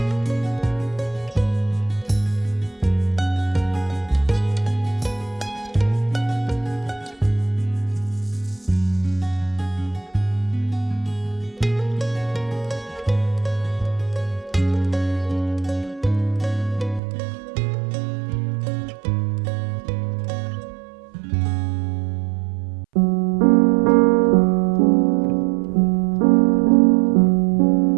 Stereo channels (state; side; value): drops out; left; at 17.0 s